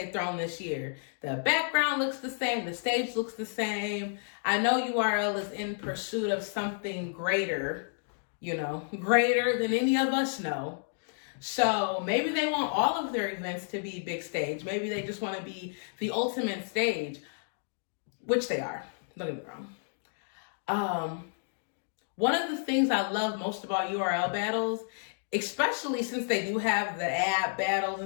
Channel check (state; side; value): silent; right; digital silence